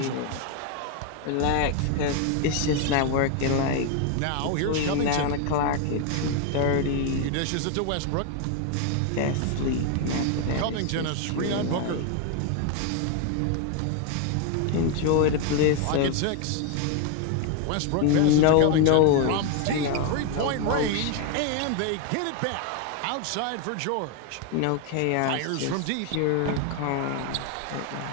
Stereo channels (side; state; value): both; different; correlation 0.01